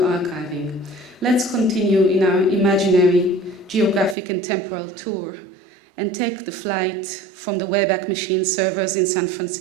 let's continue in our imaginary geographic and temporal tour and take the flight from the Wayback Machine servers in San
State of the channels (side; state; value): left; drops out; at 4.2 s